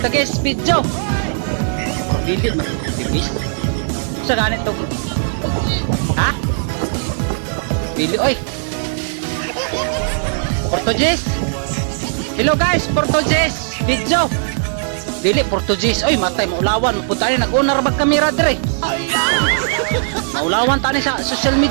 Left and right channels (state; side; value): silent; left; digital silence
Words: video. Dili man Portuguese. Sa ganito. Ha? Dili oy. Portuguese. Hello guys, Portuguese video. Dili Portuguese. Oy, matay maulawan, mapunta ni nag-unar mag kamera dire. Maulawan tani sa social